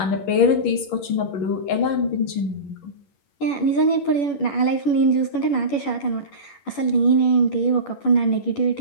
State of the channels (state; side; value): late; right; 11 ms